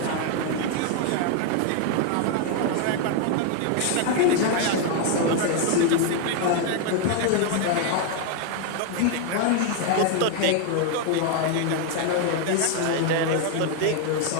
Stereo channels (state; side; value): different; both; correlation 0.01